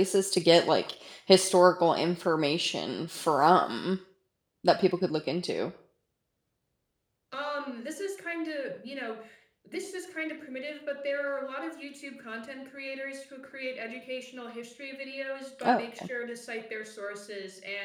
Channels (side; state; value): both; identical; correlation 1.00